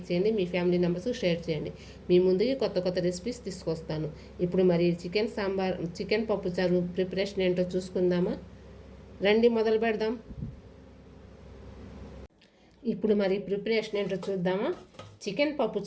చేయండి, మీ ఫ్యామిలీ మెంబర్స్ షేర్ చేయండి. మీ ముందుకి కొత్త రెసిపీస్ తీసుకొస్తాను. ఇప్పుడు మరి చికెన్ పప్పుచారు ప్రిపరేషన్ ఏంటో చూసుకుందామా. రండి మొదలు పెడదాం. ఇప్పుడు మరి ప్రిపరేషన్ ఏంటో చూద్దామా. చికెన్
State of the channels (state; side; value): identical; both; correlation 1.00